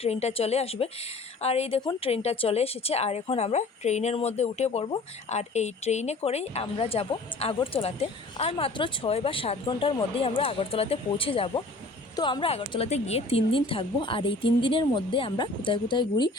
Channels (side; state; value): right; quieter; 3.1 dB